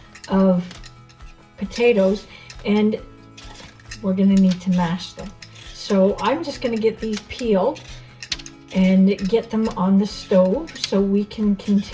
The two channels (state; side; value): identical; both; correlation 1.00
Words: of potatoes, and we're going to need to mash them. So I'm just going to get these peeled and get them on the stove so we can